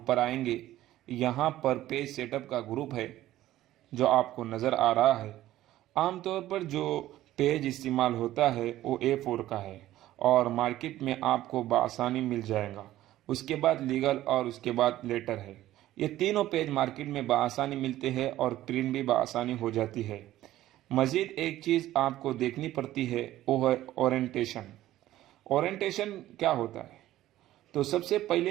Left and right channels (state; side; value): quieter; left; 14.4 dB